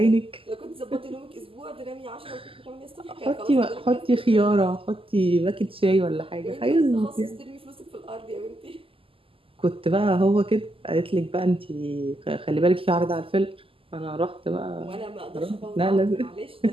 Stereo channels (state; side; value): late; left; 0.26 ms